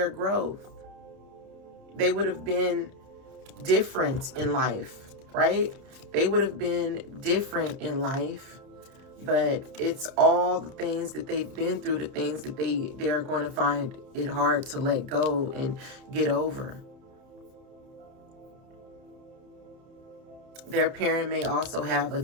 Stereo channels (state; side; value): late; left; 30 ms